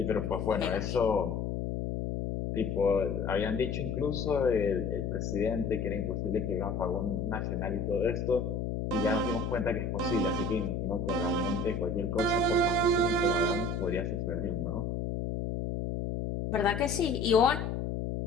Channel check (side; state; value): left; noise; hum, 2 dB below the sound